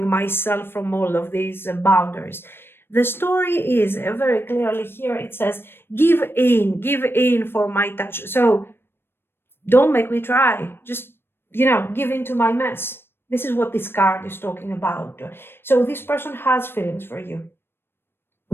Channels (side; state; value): right; late; 0.11 ms